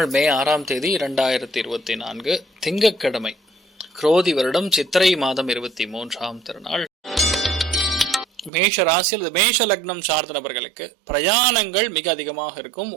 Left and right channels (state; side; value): drops out; left; at 8.5 s